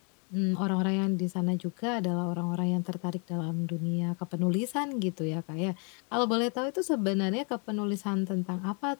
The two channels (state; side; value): quieter; right; 37.5 dB